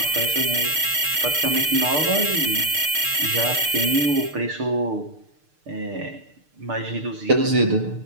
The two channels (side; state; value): left; late; 6.7 ms